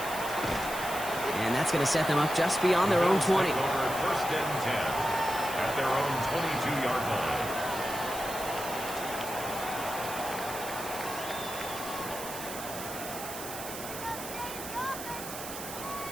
And that's going to set them up just beyond their own 20. 1st and 10 at their own 22-yard line.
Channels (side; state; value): right; noise; hiss, 9 dB below the sound